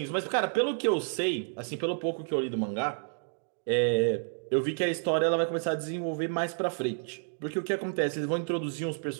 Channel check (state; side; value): silent; left; 58 dB below the other